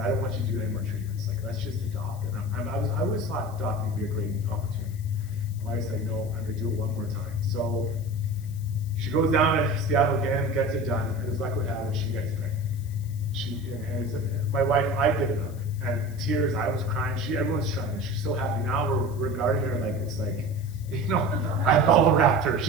I don't want you to do any more treatments. Like, let's just adopt. And I always thought adopting would be a great opportunity. My wife said, no, I'm gonna do it one more time. So she goes down to Seattle again, gets it done, and as luck would have it, she gets pregnant. My wife, I did it up, and tears, I was crying, everyone's trying, she's so happy. Now we're regarding her like it's like, I bubble wrapped her.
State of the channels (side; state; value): left; noise; hiss, 23 dB below the sound